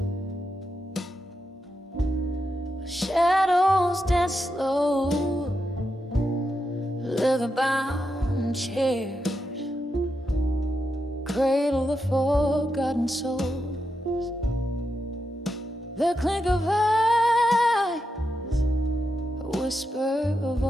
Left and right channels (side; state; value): both; normal; correlation 0.85